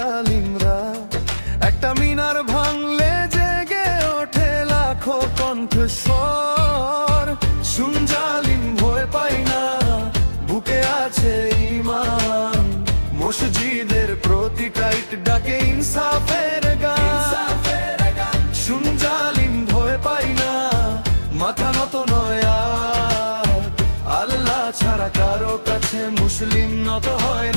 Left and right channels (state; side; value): inverted; both; correlation -1.00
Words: একটা মিনার ভাঙলে জেগে ওঠে লাখো কণ্ঠস্বর। শুন জালিম ভয় পাই না, বুকে আছে ঈমান। মসজিদের প্রতি টাইট ডাকে ইনসাফের গান। শুন জালিম ভয় পাই না, মাথা নত নয় আর। আল্লাহ ছাড়া কারো কাছে মুসলিম নত হয়